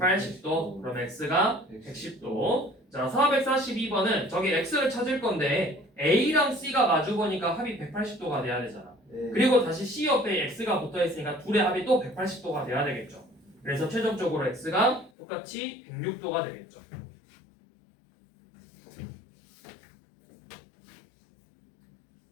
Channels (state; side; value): drops out; right; at 15.1 s